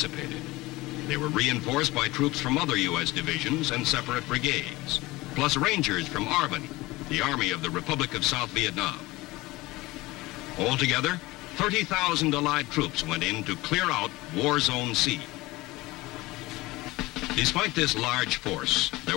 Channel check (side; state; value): right; quieter; 20.4 dB